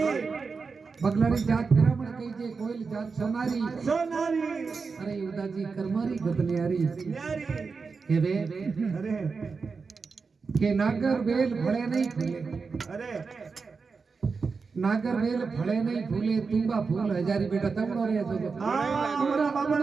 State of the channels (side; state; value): left; quieter; 4.8 dB